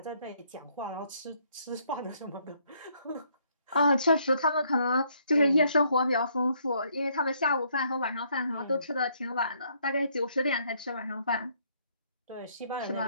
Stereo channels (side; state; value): both; inverted; correlation -0.69